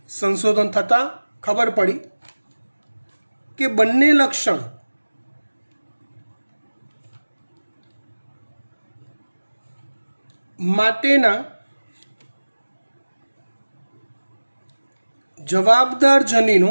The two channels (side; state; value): both; inverted; correlation -1.00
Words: સંશોધન થતાં ખબર પડી કે બંને લક્ષણ માટેના જવાબદાર